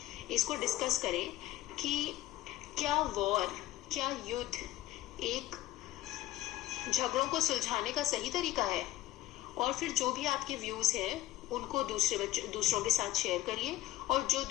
इसको डिस्कस करें कि क्या वॉर, क्या युद्ध एक झगड़ों को सुलझाने का सही तरीका है, और फिर जो भी आपके व्यूज हैं उनको दूसरों के साथ शेयर करिए, और जो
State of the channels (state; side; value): quieter; right; 14.9 dB